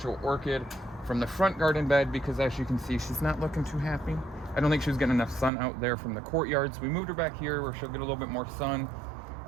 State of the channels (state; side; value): drops out; left; at 5.5 s